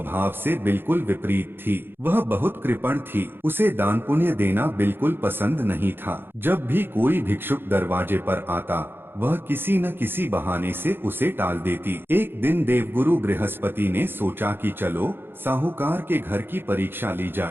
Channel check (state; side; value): late; left; 0.10 ms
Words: से बिल्कुल विपरीत थी। वह बहुत कृपण थी। उसे दान पुण्य देना बिल्कुल पसंद नहीं था। जब भी कोई भिक्षुक दरवाजे पर आता, वह किसी न किसी बहाने से उसे टाल देती। एक दिन देवगुरु बृहस्पति ने सोचा कि चलो साहूकार के घर की परीक्षा ली